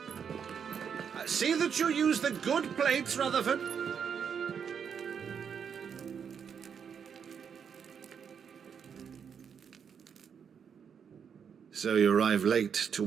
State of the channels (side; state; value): left; quieter; 7.2 dB